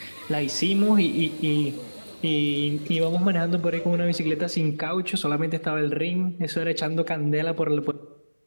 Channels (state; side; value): inverted; both; correlation -1.00